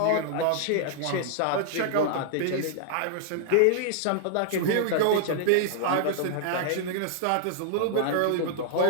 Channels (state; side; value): different; both; correlation -0.01